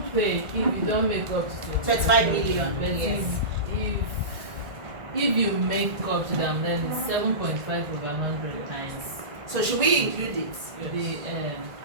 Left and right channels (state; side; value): late; left; 1.8 ms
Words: pay if you don't make up to 25 million. But Yes. if you make up to them, then it's 7.5 over 100 times. So should we include it? The